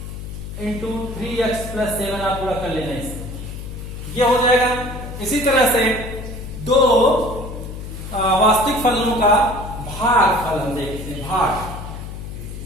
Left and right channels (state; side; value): noise; left; hum, 9 dB below the sound